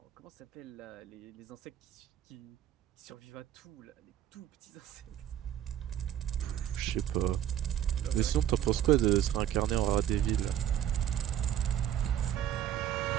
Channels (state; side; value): quieter; left; 11.0 dB